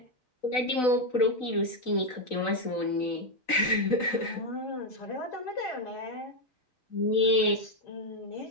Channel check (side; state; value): right; late; 3.9 ms